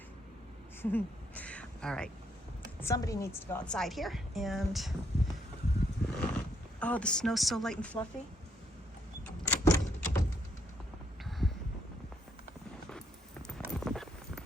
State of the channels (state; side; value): normal; both; correlation 0.73